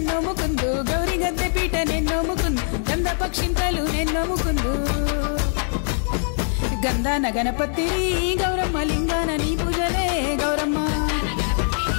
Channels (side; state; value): right; silent; digital silence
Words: నోముకుందు గౌరీ గద్దె పీట నేను నోముకుందు గంధ పక్షింతలు నేను నోముకుందు గంధాన గణపతి గౌరమ్మ లింగాన నీ పూజలే గౌరమ్మ